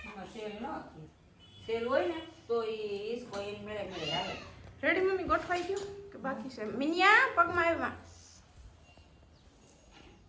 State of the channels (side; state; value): both; identical; correlation 1.00